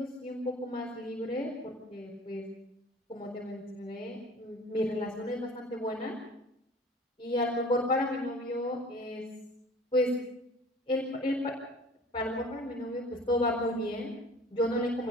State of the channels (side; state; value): both; normal; correlation 0.46